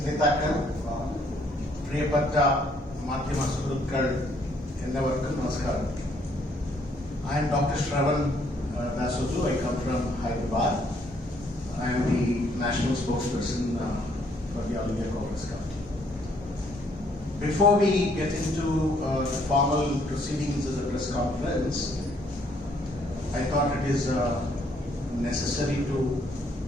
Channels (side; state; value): both; normal; correlation 0.67